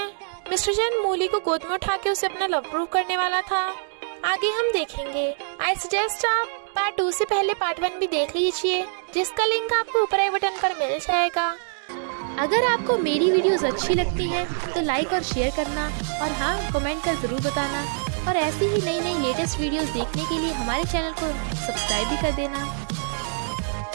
मिस्टर चैन मूली को गोद में उठा के उसे अपना लव प्रूव करने वाला था। आगे हम देखेंगे। आई सजेस्ट आप पार्ट 2 से पहले पार्ट 1 भी देख लीजिए, जिसका लिंक आपको ऊपर आई बटन पर मिल जाएगा। अगर आपको मेरी वीडियोस अच्छी लगती हैं तो लाइक और शेयर करना, और हाँ, कमेंट कर जरूर बताना। और ऐसी ही नई नई लेटेस्ट वीडियोस देखने के लिए हमारे चैनल को सब्सक्राइब भी कर देना।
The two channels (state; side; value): silent; left; digital silence